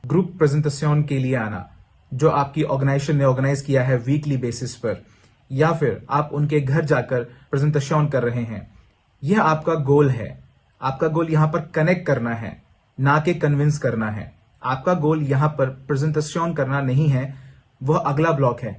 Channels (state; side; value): identical; both; correlation 1.00